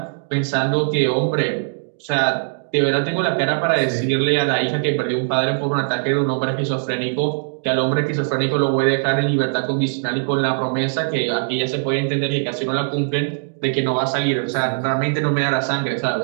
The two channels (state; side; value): silent; left; digital silence